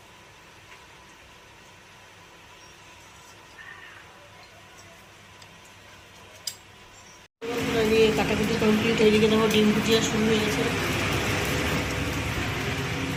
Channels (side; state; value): both; identical; correlation 1.00